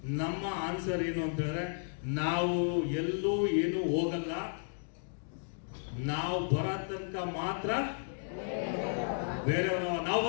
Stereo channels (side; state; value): right; silent; digital silence